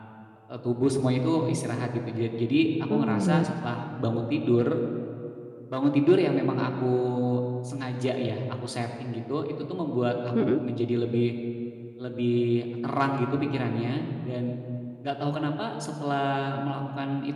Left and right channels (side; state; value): both; identical; correlation 1.00